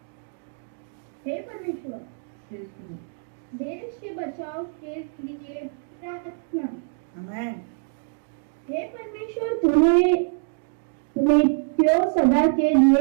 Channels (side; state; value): left; silent; 62 dB below the other